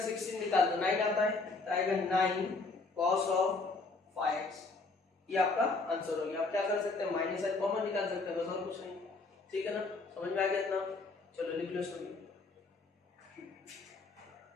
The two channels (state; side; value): quieter; right; 3.7 dB